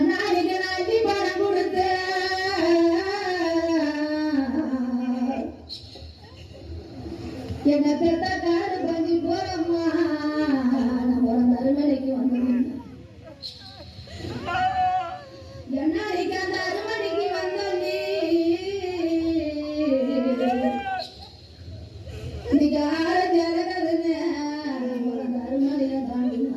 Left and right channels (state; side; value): identical; both; correlation 1.00